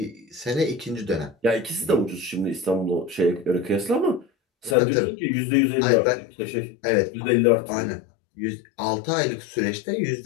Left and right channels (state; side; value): drops out; right; at 4.8 s